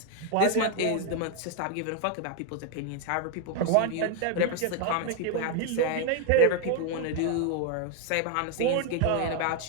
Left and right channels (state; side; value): different; both; correlation 0.01